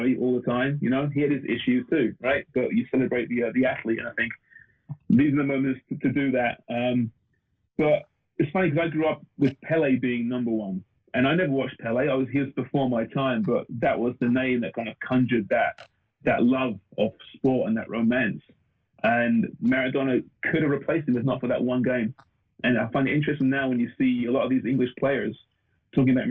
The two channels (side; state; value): both; identical; correlation 1.00